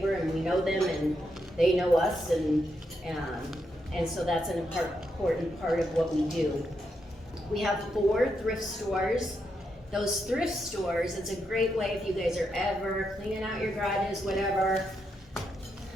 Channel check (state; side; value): normal; both; correlation 0.82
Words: and we know them and they know us, and so that's an important part of what we do. We have 4 thrift stores. Those thrift stores, it's a great way if you guys are ever cleaning out your garages, whatever.